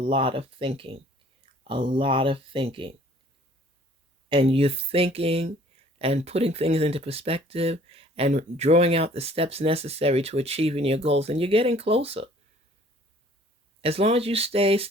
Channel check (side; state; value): both; normal; correlation 0.55